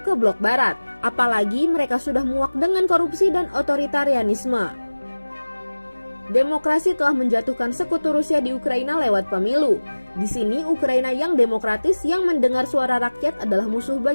ke blok barat. Apalagi mereka sudah muak dengan korupsi dan otoritarianisme. Demokrasi telah menjatuhkan sekutu Rusia di Ukraina lewat pemilu. Di sini Ukraina yang demokratis yang mendengar suara rakyat adalah musuh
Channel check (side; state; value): both; inverted; correlation -1.00